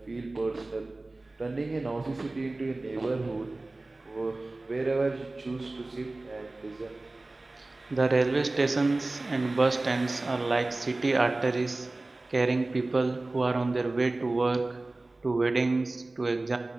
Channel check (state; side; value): quieter; left; 3.0 dB